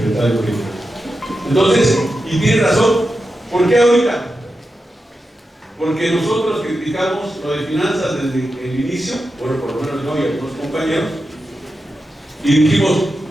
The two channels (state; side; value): normal; both; correlation 0.90